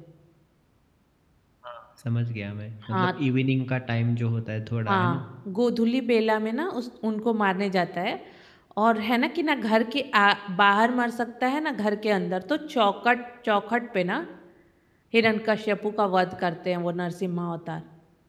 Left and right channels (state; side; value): identical; both; correlation 1.00